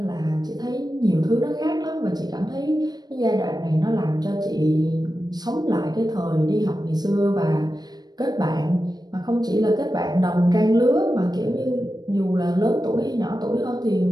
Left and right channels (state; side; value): late; left; 0.19 ms